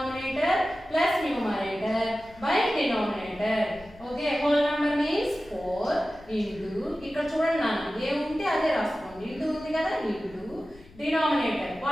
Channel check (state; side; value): noise; left; rumble, 23 dB below the sound